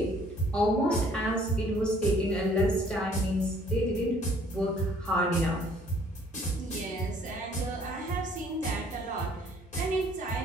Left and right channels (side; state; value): both; normal; correlation 0.58